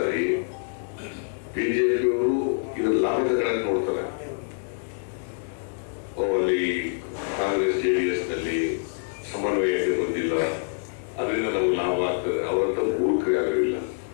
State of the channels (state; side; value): silent; right; digital silence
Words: BJPಯವರು ಇದರ ಲಾಭ ತಗೊಳಕ್ ನೋಡ್ತಾರೆ. ಅಲ್ಲಿ ಕಾಂಗ್ರೆಸ್ JDSನಲ್ಲಿ ಸಮನ್ವಯತೆ ಬಂದಿಲ್ಲ, ಅದರಿಂದ ನಮ್ಗೆ ಲಾಭ ಆಗ್ತದೆ. ಅವರಂತ ಮೂರ್ಖರು ಯಾರು ಇಲ್ಲ,